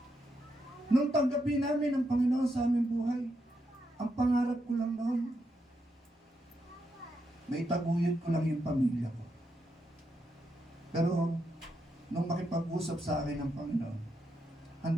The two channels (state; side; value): normal; both; correlation 0.82